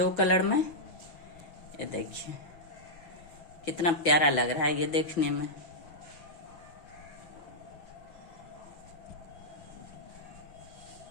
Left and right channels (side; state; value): right; late; 6.1 ms